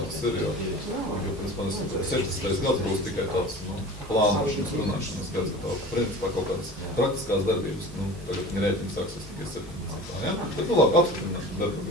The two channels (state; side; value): normal; both; correlation 0.38